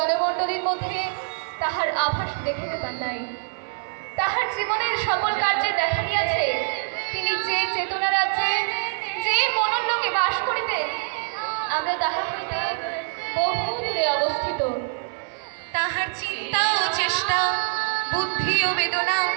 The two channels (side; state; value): left; silent; 56 dB below the other